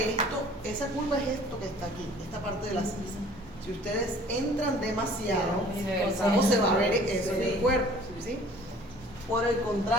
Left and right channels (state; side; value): normal; both; correlation 0.51